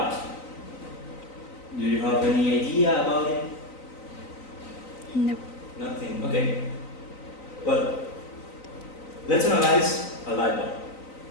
Do you have any idea about it? No. Nothing. Okay. Well, let's analyze a light bulb.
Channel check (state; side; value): late; right; 3.9 ms